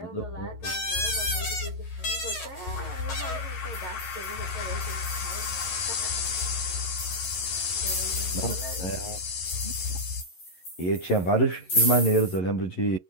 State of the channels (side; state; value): right; late; 11 ms